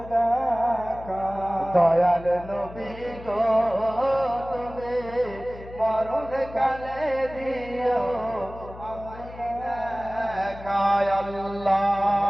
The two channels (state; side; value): noise; left; hum, 16 dB below the sound